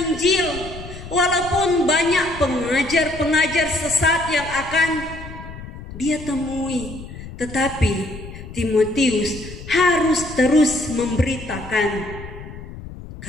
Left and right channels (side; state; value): left; noise; rumble, 13 dB below the sound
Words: Walaupun banyak pengajar-pengajar sesat yang akan dia temui, tetapi Timotius harus terus memberitakan